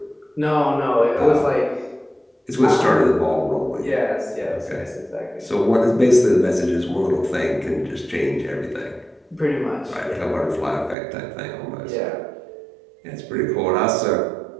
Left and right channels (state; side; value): drops out; left; at 11.0 s